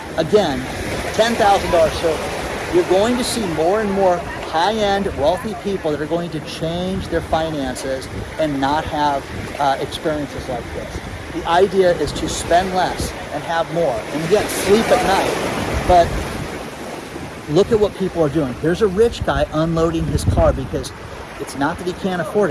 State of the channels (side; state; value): both; identical; correlation 1.00